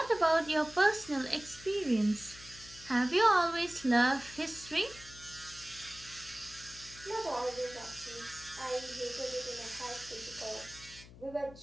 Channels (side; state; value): left; noise; hum, 19 dB below the sound